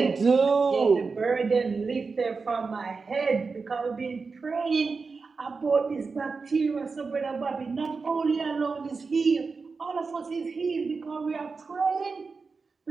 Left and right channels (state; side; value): quieter; left; 4.6 dB